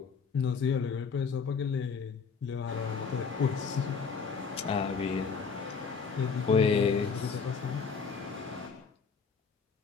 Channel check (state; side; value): quieter; right; 5.5 dB